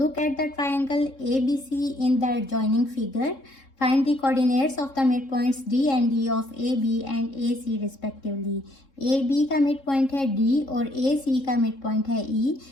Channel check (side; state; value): right; late; 3.7 ms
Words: at the triangle ABC in the adjoining figure, find the coordinates of the mid points D and D of AB and AC respectively. AB का mid point है D और AC का mid point है E,